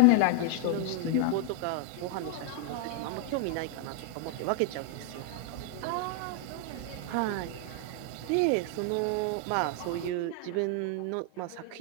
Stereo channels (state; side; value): different; both; correlation 0.00